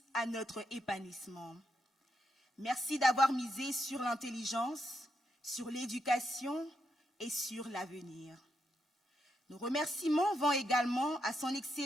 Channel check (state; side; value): normal; both; correlation 0.81